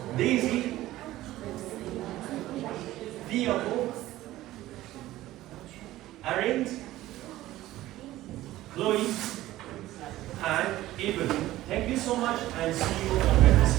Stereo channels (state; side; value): quieter; left; 15.7 dB